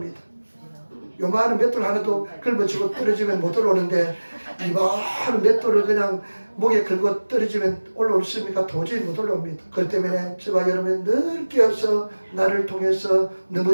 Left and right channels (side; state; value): both; inverted; correlation -1.00